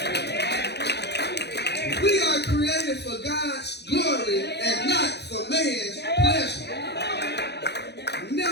We are created for God's glory and not for man's pleasure.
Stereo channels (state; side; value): late; right; 0.49 ms